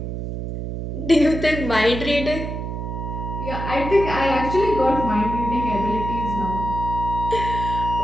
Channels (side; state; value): right; noise; hum, 5 dB below the sound